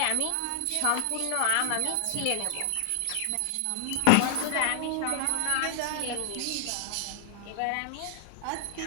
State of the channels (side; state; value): both; different; correlation 0.00